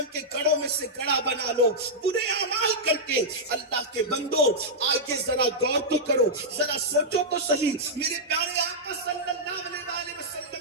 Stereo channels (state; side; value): normal; both; correlation -0.08